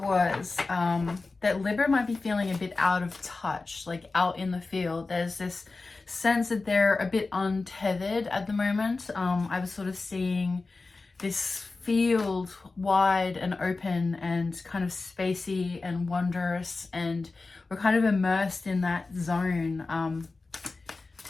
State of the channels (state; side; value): quieter; right; 3.7 dB